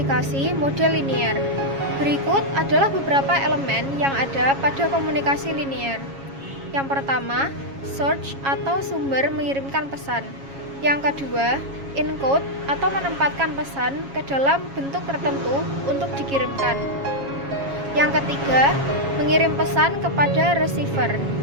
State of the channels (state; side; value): late; left; 7.3 ms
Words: model linear. Berikut adalah beberapa elemen yang ada pada komunikasi linear. Yang pertama, source atau sumber mengirimkan pesan. Yang kedua, encode atau menempatkan pesan ke dalam bentuk tertentu untuk dikirimkan. Yang ketiga, mengirim pesan kepada receiver.